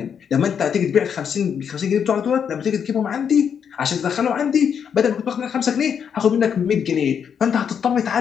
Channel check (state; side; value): quieter; right; 7.6 dB